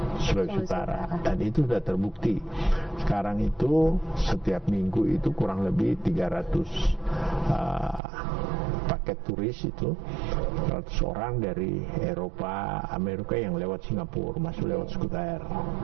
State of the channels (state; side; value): drops out; left; at 8.0 s